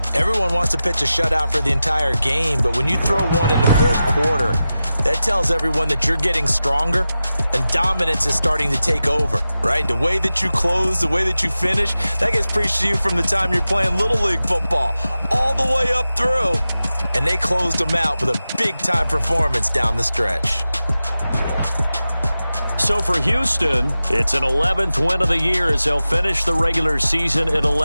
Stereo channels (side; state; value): both; inverted; correlation -0.94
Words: Everyone wants to pitch a shutout for the entire game, but when you throw one in the 4th quarter, that tells everyone that you're getting stronger and dominance is starting to take over, right? The way that you close, the way that you finish, that gets preached to you from the time you're playing Little League football all the way up through. And they closed them out with a big-time performance down the stretch. So for Houston, it's an 11th win of the year as they'll finish the regular season at